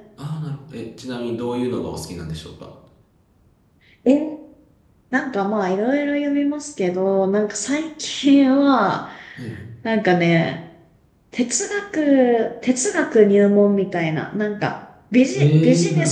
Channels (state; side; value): identical; both; correlation 1.00